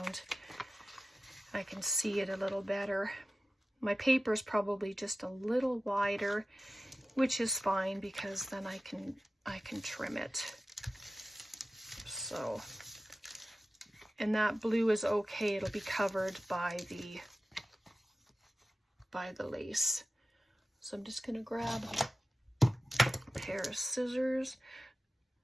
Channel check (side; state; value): both; normal; correlation 0.94